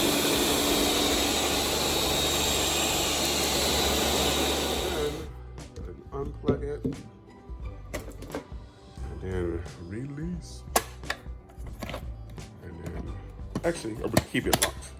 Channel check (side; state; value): both; identical; correlation 1.00